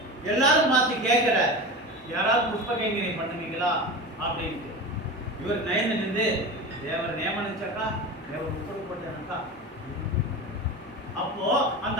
எல்லாரும் பார்த்து கேட்கிற, யாராவது புஷ்ப கைங்கரியம் பண்ணுவீங்களா அப்படின்ட்டு. இவர் நயந்து நின்று தேவர் நியமனிச்சாக்கா, தேவர் உத்தரவு போட்டாக்கா. அப்போ அந்த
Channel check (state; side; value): normal; both; correlation 0.28